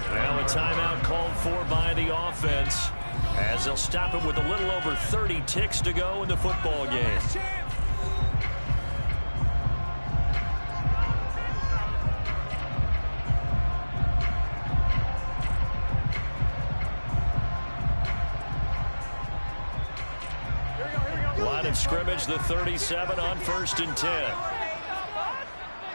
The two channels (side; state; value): both; inverted; correlation -1.00